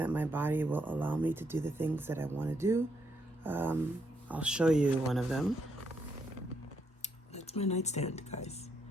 my body will allow me to do the things that I want to do. I'll show you one of them. That's my nightstand, guys.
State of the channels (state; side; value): normal; both; correlation 0.77